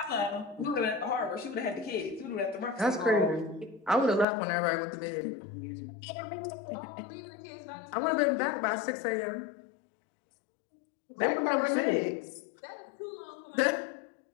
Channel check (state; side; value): drops out; right; at 4.2 s